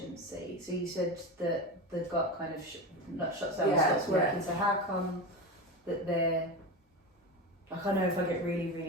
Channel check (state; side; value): normal; both; correlation 0.23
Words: so you said that the gut kind of shuts down and stops working. So how come that they're I know if I get really,